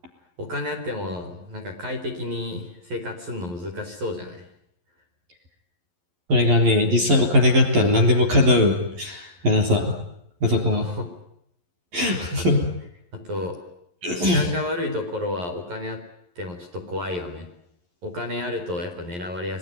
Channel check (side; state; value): left; late; 11 ms